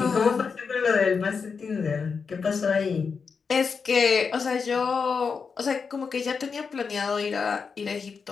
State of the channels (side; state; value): right; quieter; 5.5 dB